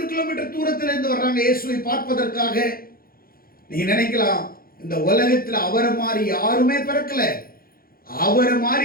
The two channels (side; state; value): right; late; 0.43 ms